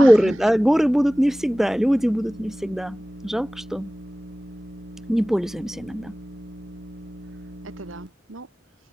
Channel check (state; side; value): normal; both; correlation 0.98